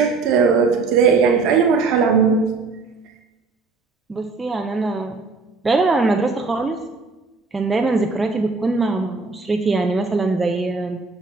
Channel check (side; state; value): left; quieter; 4.2 dB